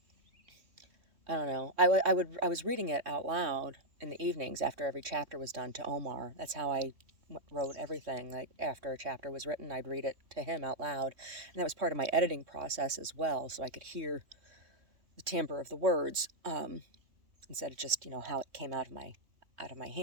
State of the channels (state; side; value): late; left; 3.1 ms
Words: I don't know, I was reading it out loud in the evenings after every chapter was done to Omar. That's how I wrote everything. Like, after a chapter was written, I'd read it to him out loud. And that was part of my editing process as well, so I could hear the timbre of the words, instead of just, how it came out of my